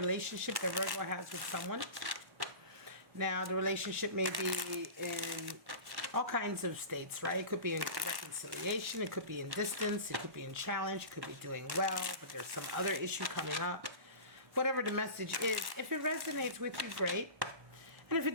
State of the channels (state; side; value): late; left; 1.1 ms